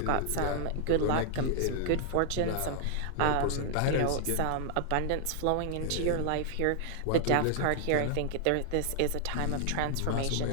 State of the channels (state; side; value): different; both; correlation 0.00